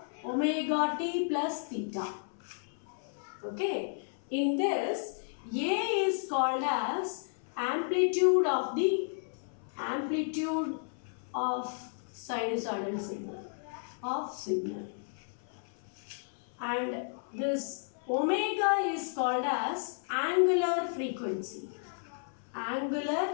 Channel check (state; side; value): silent; right; 56 dB below the other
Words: omega t plus theta. Okay. In this, a is called as amplitude of sinusoidal signal, and this omega is called as angular frequency